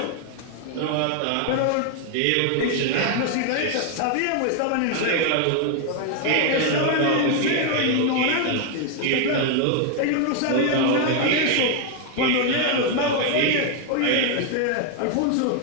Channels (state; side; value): different; both; correlation 0.01